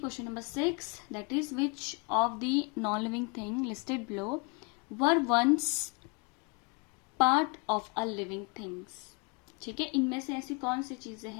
number 6, that is which of the non living thing listed below were once part of a living things. ठीक है, इनमें से ऐसी कौन सी चीजें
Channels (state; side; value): quieter; right; 32.5 dB